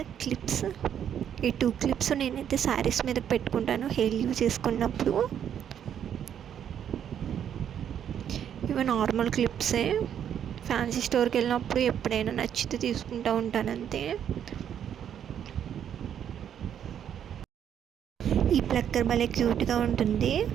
క్లిప్స్. ఈ 2 క్లిప్స్ నేనైతే శారీస్ మీద పెట్టుకుంటాను హెయిర్ లీవ్ చేసుకున్నప్పుడు. ఇవి నార్మల్ క్లిప్సే. ఫ్యాన్సీ స్టోర్కి వెళ్ళినప్పుడు ఎప్పుడైనా నచ్చితే తీసుకుంటూ ఉంటాను అంతే. ఈ ప్లక్కర్ భలే క్యూట్గా ఉంటుంది.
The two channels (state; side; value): quieter; left; 9.2 dB